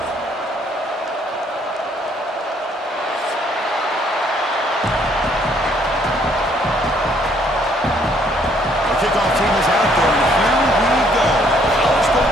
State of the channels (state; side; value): normal; both; correlation 0.65